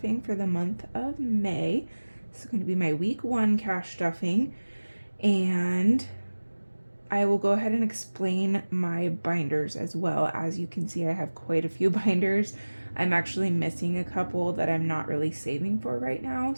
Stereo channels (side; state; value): both; inverted; correlation -1.00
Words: for the month of May. This is going to be my week 1 cash stuffing. And I will go ahead and explain my binders as well. As you can see, I have quite a few binders. I'm actually missing a couple that I'm not really saving for right now.